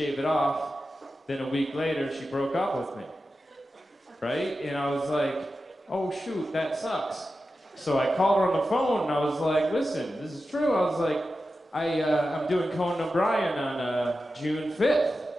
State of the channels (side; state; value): both; normal; correlation 0.92